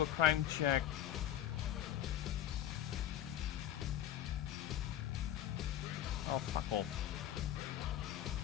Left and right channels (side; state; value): right; quieter; 11.6 dB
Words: a crime check. Oh, fuck off.